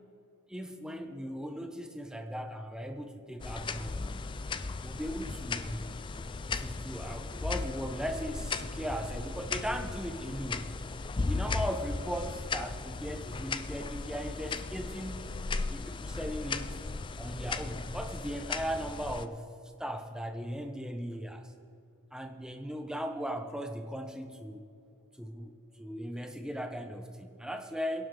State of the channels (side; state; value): both; normal; correlation 0.69